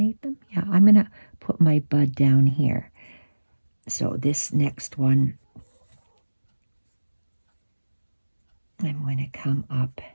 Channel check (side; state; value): both; inverted; correlation -1.00